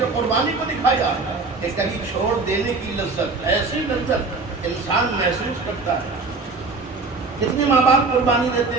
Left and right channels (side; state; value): left; quieter; 3.9 dB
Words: قربانی کو دکھایا کہ کبھی چھوڑ دینے کی لذت، ایسی لذت انسان محسوس کرتا ہے. کتنے ماں باپ قربانی دیتے